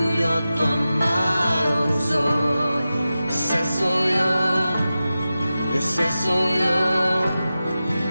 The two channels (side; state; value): both; inverted; correlation -0.94